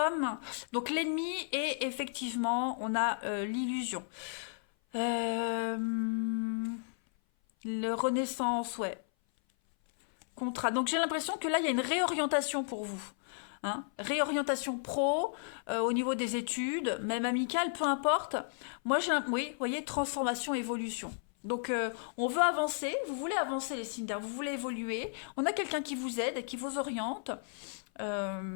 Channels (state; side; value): silent; right; 55 dB below the other